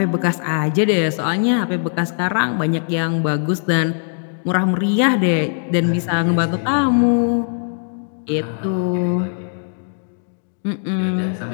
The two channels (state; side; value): silent; right; digital silence